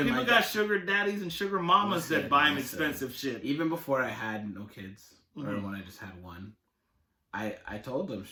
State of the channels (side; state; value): both; identical; correlation 1.00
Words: People like got that. sugar daddies and sugar mamas that buy them expensive shit. Even before I had no kids, or when I just had one, I told them